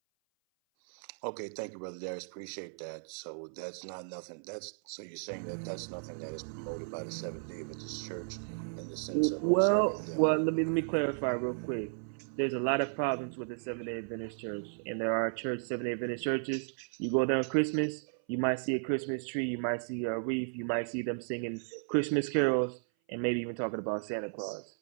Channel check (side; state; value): left; silent; 55 dB below the other